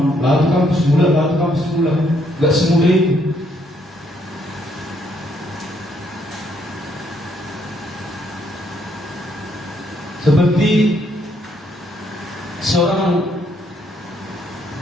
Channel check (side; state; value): both; normal; correlation 0.71